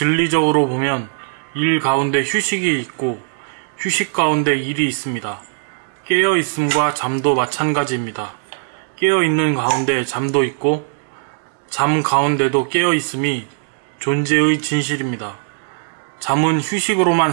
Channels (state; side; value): silent; left; digital silence